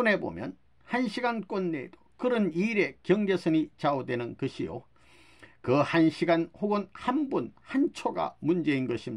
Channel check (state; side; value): identical; both; correlation 1.00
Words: 보면 1시간권 내에도 그런 일의 경계선이 좌우되는 것이요, 그 1시간 혹은 한 분 한 초가 문제인